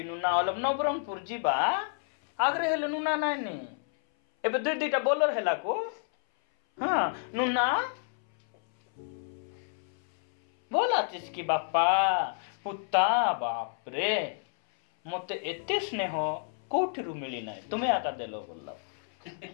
ନୁନା, ନବରଙ୍ଗପୁର ଯିବା। ଆଗରେ ହେଲେ ନୁନା ନାଇନି, ଏବେ ଦୁଇଟା ବୋଲର ହେଲା କୁ। ହଁ ନୁନା ଭଲ ଆছিস କି ବାପା? ପୁତା ବାପରେ, ମତେ ଏତେ ସ୍ନେହ କୋଉଠିରୁ ମିଳି ନାହିଁ, ତୁମେ ଆକା ଦେଲ ବୋଲା।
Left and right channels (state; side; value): silent; right; 58 dB below the other